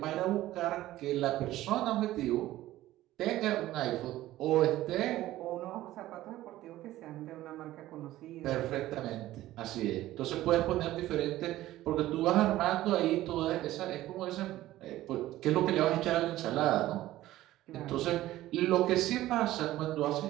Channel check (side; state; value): left; quieter; 15.3 dB